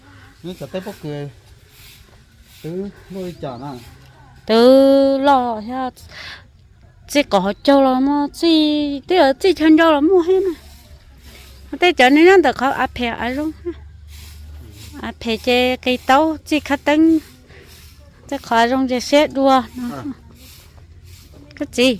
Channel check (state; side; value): identical; both; correlation 1.00